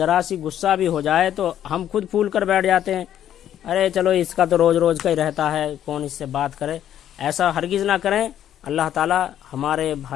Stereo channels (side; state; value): right; quieter; 10.7 dB